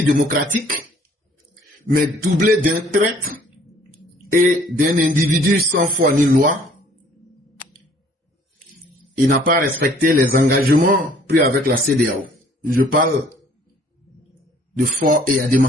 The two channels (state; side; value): normal; both; correlation 0.58